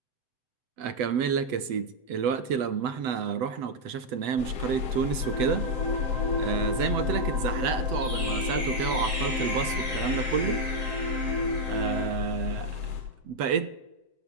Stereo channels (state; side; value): late; left; 8.0 ms